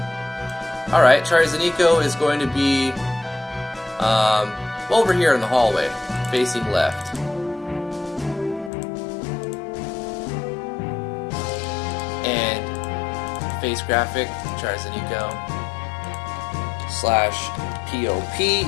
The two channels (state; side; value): drops out; right; at 8.7 s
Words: Alright, Charles and Nico is going to be over here in the hallway, facing left. And face graphic, Charles and Nico.